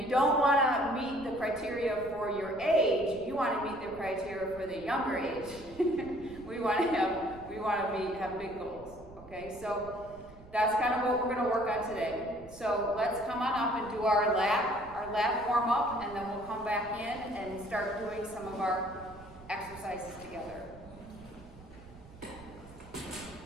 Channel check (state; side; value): noise; right; rumble, 19 dB below the sound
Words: you don't want to meet the criteria for your age. You want to meet the criteria for the younger age. we want to have big goals. Okay, so that's kind of what we're going to work on today. So let's come on up and do our lap warm up, and then we'll come back in and start doing some of our exercises together.